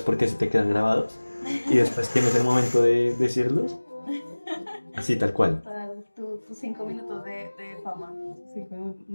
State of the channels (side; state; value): both; inverted; correlation -1.00